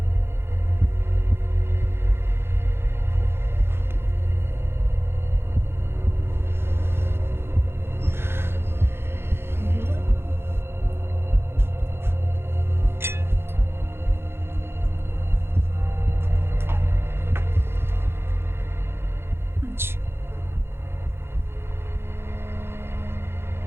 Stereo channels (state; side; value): late; left; 0.11 ms